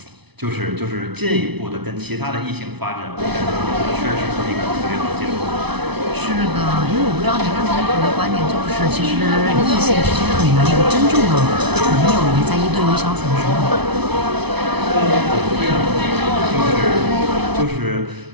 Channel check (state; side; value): late; left; 0.99 ms